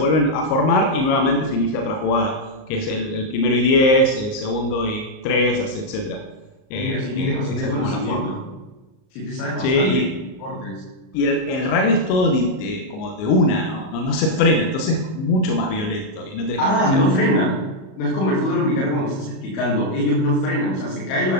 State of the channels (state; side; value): late; right; 38 ms